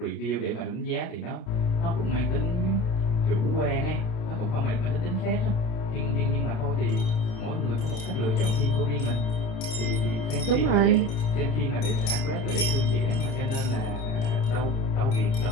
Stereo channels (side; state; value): right; late; 28 ms